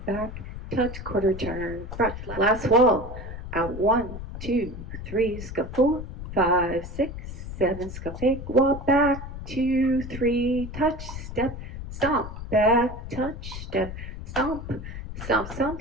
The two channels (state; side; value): noise; left; rumble, 9 dB below the sound